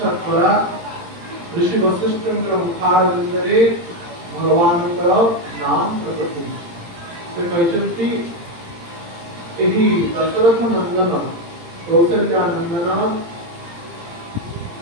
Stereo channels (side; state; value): left; late; 18 ms